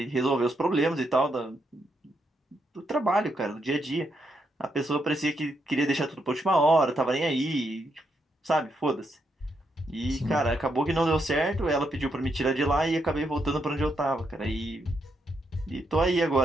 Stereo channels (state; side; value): normal; both; correlation 0.80